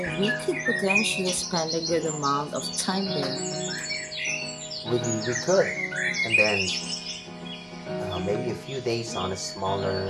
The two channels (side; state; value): both; identical; correlation 1.00